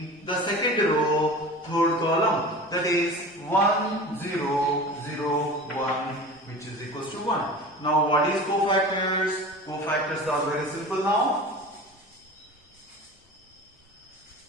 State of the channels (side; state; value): both; normal; correlation 0.36